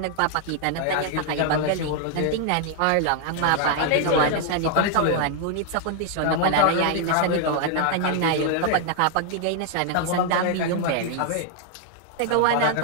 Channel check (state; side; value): different; both; correlation 0.00